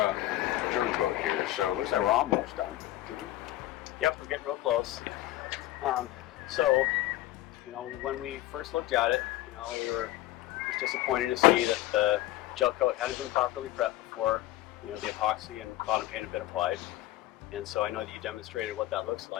Joe's boat here. So it looks like we're almost done. Yep, we're getting real close. So, when we first looked at it, it was disappointing to see that the gel coat hadn't been properly prepped before, the epoxy and bottom paint had been applied. And so I know that you demonstrated what that looks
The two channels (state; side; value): quieter; right; 15.9 dB